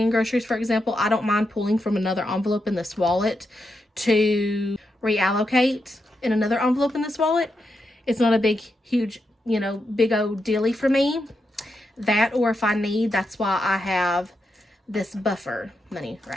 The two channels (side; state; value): both; normal; correlation 0.85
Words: in groceries, for example, I don't mind pulling from another envelope in this wallet to reallocate in another envelope in this wallet. It's not a big, huge, you know, big old dealy for me. That, or if I need, that's why I have this buffer money